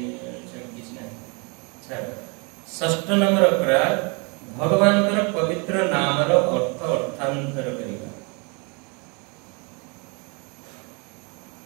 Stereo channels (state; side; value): quieter; left; 32.7 dB